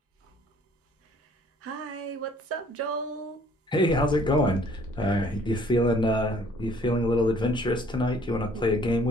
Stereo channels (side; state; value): both; normal; correlation 0.58